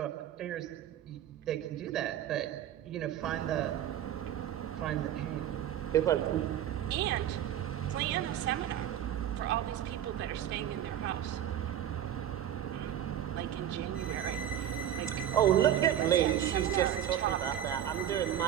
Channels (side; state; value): left; quieter; 10.6 dB